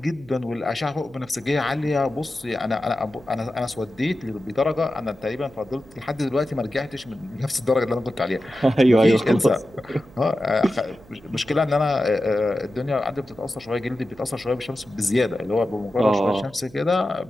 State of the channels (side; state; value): right; noise; hum, 24 dB below the sound